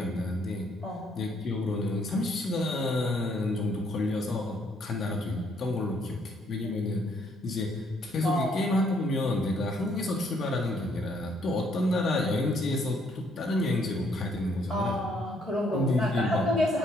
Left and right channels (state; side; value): normal; both; correlation 0.69